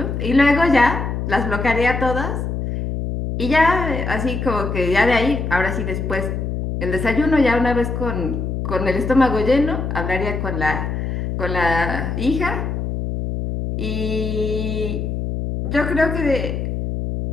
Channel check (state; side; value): noise; left; hum, 3 dB below the sound